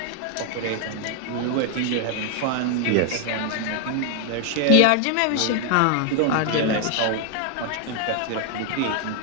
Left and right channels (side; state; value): both; different; correlation 0.00